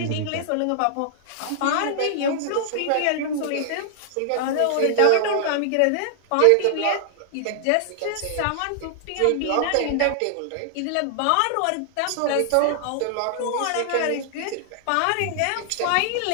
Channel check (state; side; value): different; both; correlation -0.01